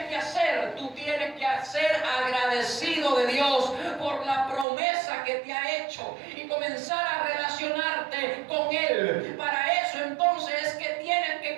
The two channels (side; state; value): left; drops out; at 4.7 s